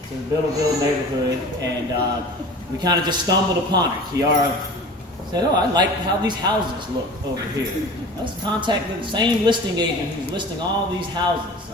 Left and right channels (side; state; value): both; normal; correlation 0.39